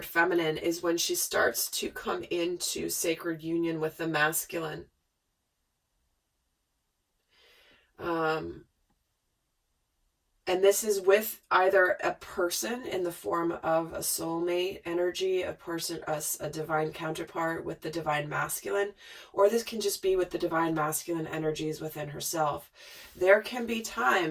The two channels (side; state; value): both; identical; correlation 1.00